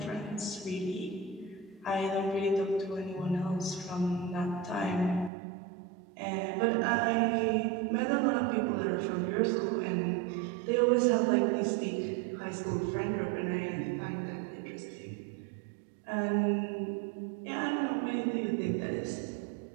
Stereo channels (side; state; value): left; drops out; at 5.3 s